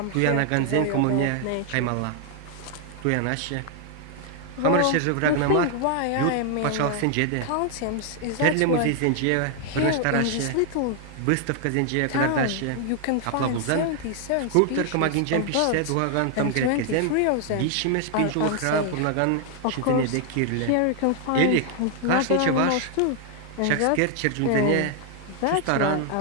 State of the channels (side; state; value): both; different; correlation 0.00